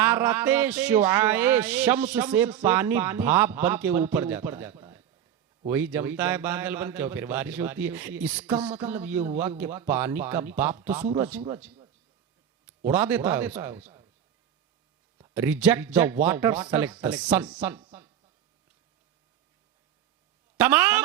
शुआए शम्स से पानी भाप बन के ऊपर जाता है। वही जमता है बादल बन के और फिर बारिश होती है। इसका मतलब ये हुआ कि पानी का बाप तो सूरज उड़ा देता है। Reject the water, select the sun. तमाम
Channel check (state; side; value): quieter; left; 9.8 dB